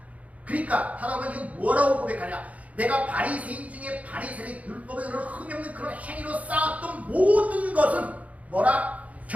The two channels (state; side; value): late; left; 0.069 ms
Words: 그러니까 사도 바울이 뭐라고 고백하냐? 내가 바리새인 중에 바리새인 율법에 그런 흠이 없는 그런 행위로 쌓았던 모든 것은 뭐라?